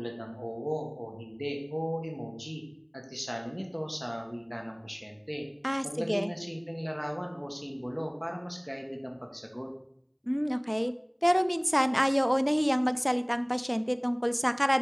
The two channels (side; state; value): both; identical; correlation 1.00